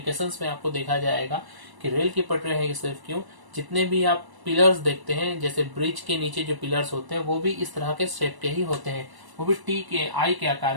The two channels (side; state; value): left; late; 1.0 ms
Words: में आपको देखा जाएगा कि रेल की पटरी है सिर्फ क्यों, जितने भी आप पिलर्स देखते हैं, जैसे ब्रिज के नीचे जो पिलर्स होते हैं वो भी इस तरह के शेप के ही होते हैं, वो भी टी के आई के